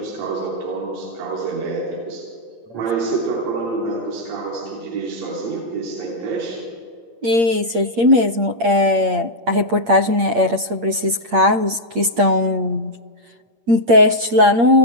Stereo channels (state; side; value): late; left; 8.6 ms